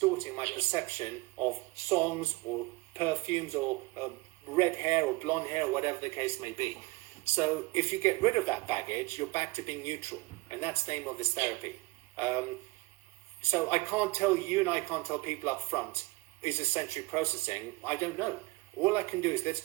my perception of songs or perfumes or red hair or blonde hair or whatever the case may be. So if you get rid of that baggage, you're back to being neutral. And that's the aim of this therapy. So I can't tell you, and I can't tell people up front, is this sensory processing? I don't know. All I can do is let's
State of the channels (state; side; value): quieter; left; 23.7 dB